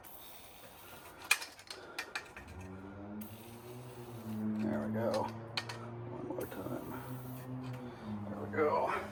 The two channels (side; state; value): both; identical; correlation 1.00